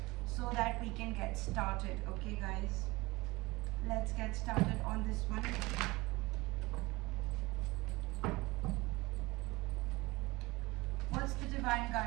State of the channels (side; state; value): left; quieter; 21.9 dB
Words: so that we can get started. Okay, guys, let's get started on this one. What's the divine